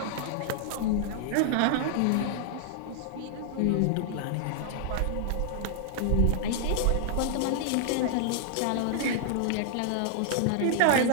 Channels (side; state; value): both; different; correlation -0.01